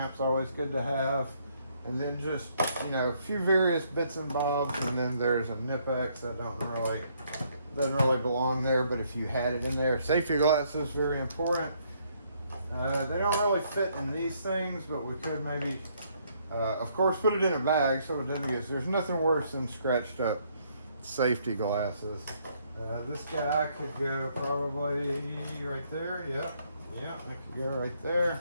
always good to have. And then just, you know, a few various bits and bobs, and then there's a Nip-X that doesn't really belong there, but if you had it in there. Safety glasses, very important. They don't really fit in these things, but we could maybe, of course, put it in a bag so it doesn't get, there's nothing worse than scratched up safety glasses. This guy could go probably right there, yep. Yeah, it could go right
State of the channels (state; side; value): inverted; both; correlation -0.69